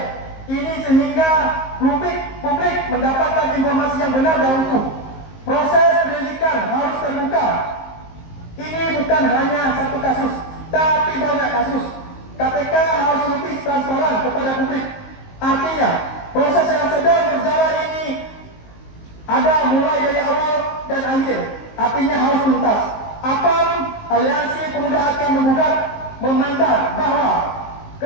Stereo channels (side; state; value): right; late; 19 ms